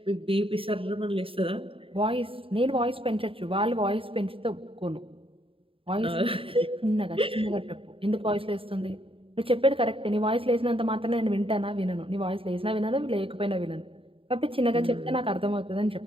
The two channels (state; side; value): late; left; 0.26 ms